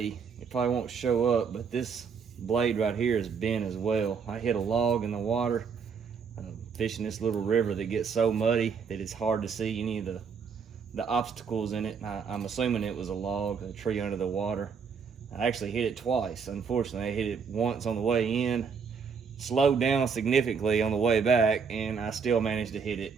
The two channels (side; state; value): left; quieter; 6.0 dB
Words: probably won't show up, but this blade right here is bent as well. I hit a log in the water fishing this little river that gets so muddy that it's hard to see any of the obstacles in it. I'm assuming it was a log, a tree under the water. I actually hit it twice. Unfortunately, I hit it once on the way in, slowed down significantly on the way back, and I still managed to hit it.